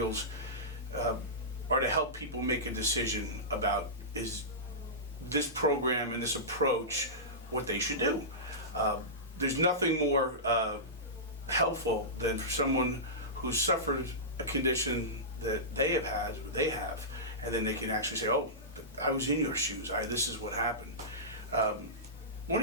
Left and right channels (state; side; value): normal; both; correlation -0.18